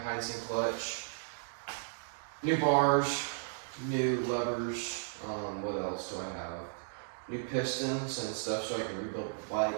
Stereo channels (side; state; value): left; silent; digital silence